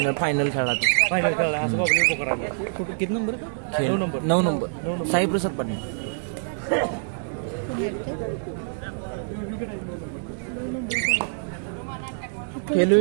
फायनल खेळला तो. किती number? 9 number. Saiprasad Patil. Khelo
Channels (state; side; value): silent; left; digital silence